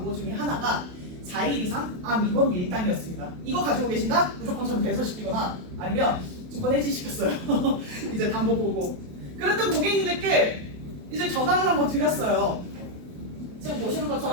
중에 하나가 4일 이상 암 입원비 일당이었습니다. 이거 가지고 계신다? 무조건 저는 배설시키거나 아니면 증권 해지시켰어요. 이제 담보 보고 그랬던 고객님들께 이제 전화를 한번 드렸어요. 지금 보시는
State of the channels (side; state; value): left; late; 28 ms